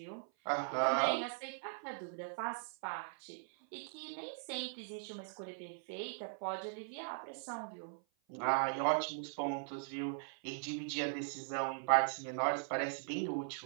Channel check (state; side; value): silent; left; 51 dB below the other